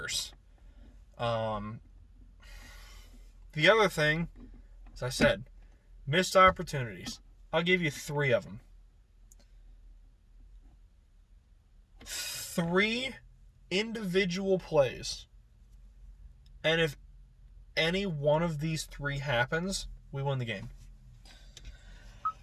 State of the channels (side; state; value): both; identical; correlation 1.00